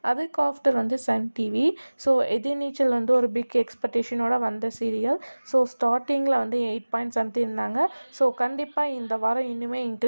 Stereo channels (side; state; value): both; inverted; correlation -1.00